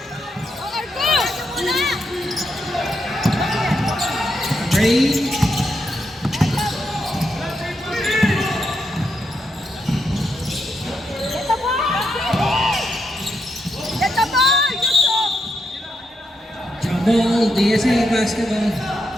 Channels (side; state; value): both; normal; correlation 0.81